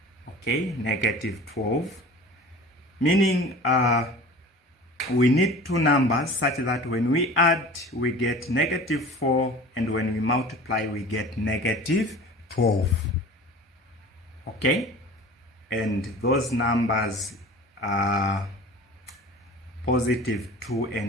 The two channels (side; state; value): both; normal; correlation 0.40